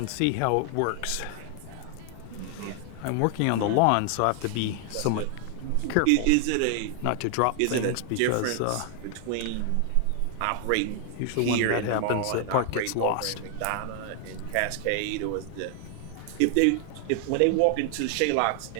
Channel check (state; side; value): different; both; correlation 0.00